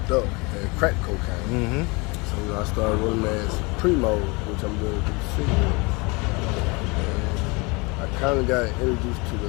up, and crack cocaine. Mm-hmm. So I started rolling as Primo, which I'm doing with the cigarettes. And I kind of got introduced to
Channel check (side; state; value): right; quieter; 27.5 dB